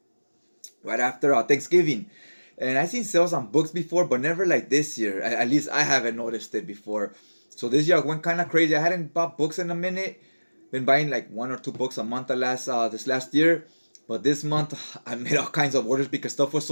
Right after Thanksgiving. And I've seen sales on books before, but never like this year. At least I haven't noticed it before. So this year I went kind of crazy. I hadn't bought books in a minute. Been buying like 1 or 2 books a month this last year. But this month I made all kinds of orders because stuff was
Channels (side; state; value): both; inverted; correlation -1.00